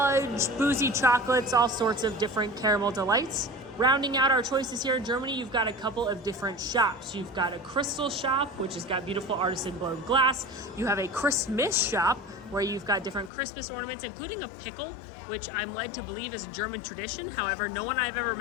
boozy chocolates, all sorts of different caramel delights. Rounding out our choices here in Germany, you've got a couple of different shops. You've got a crystal shop, which has got beautiful artisan blown glass. You have a Christmas shop, where you've got different Christmas ornaments, including a pickle, which I'm led to believe is a German tradition. However, no one I've ever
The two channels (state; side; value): drops out; right; at 13.3 s